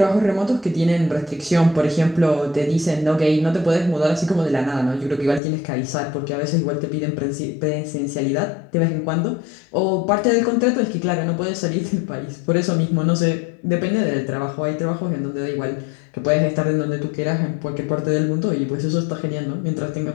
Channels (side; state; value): right; drops out; at 5.4 s